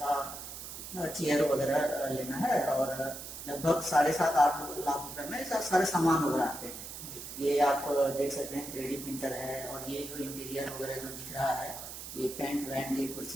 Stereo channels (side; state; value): right; noise; hiss, 10 dB below the sound